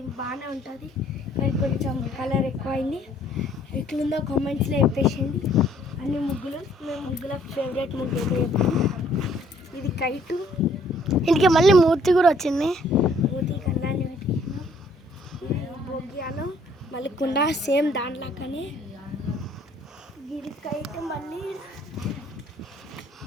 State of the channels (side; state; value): both; normal; correlation 0.62